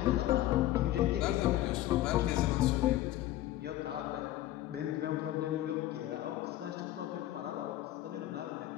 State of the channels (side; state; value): right; quieter; 14.5 dB